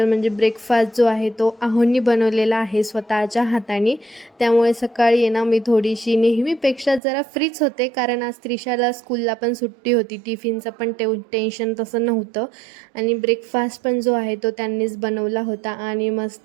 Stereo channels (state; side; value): drops out; left; at 7.0 s